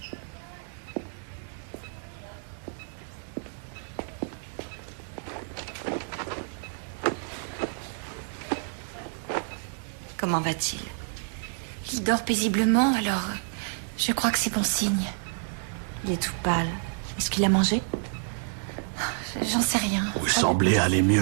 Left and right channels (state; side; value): silent; left; 59 dB below the other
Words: Comment va-t-il? Il dort paisiblement, alors je crois que c'est bon signe. Il est tout pâle. Est-ce qu'il a mangé? J'en sais rien. Vous semblez aller